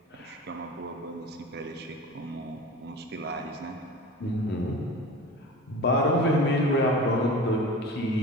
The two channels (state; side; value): normal; both; correlation 0.35